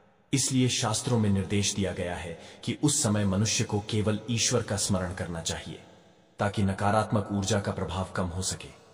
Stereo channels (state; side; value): identical; both; correlation 1.00